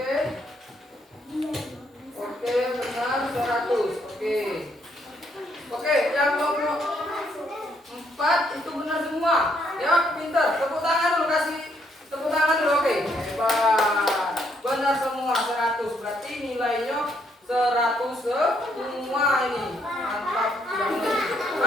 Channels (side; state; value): both; normal; correlation 0.72